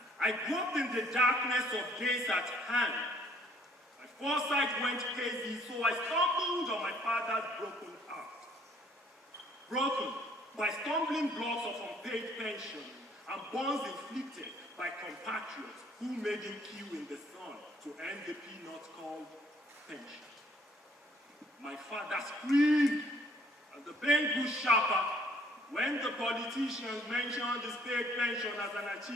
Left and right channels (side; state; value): both; normal; correlation 0.61